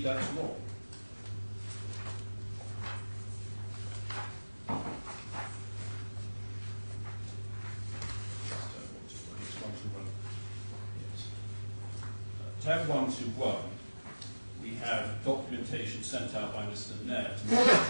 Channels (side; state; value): both; inverted; correlation -1.00